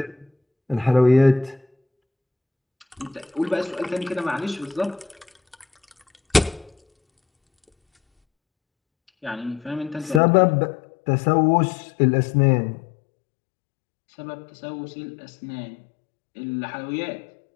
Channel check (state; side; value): drops out; right; at 10.2 s